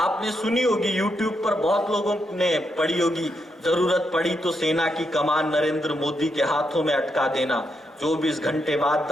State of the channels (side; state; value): both; normal; correlation 0.81